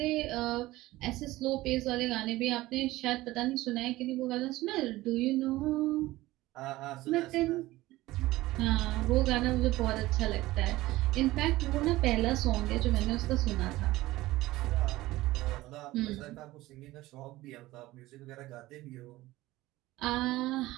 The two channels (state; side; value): quieter; left; 17.8 dB